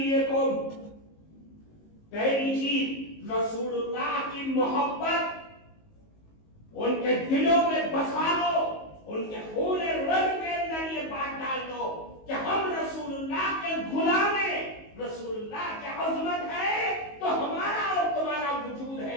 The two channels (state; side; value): late; right; 19 ms